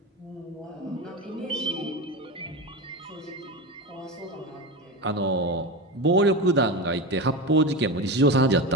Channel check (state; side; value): normal; both; correlation 0.21